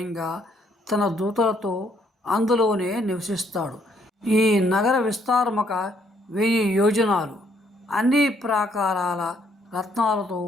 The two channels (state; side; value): normal; both; correlation 0.69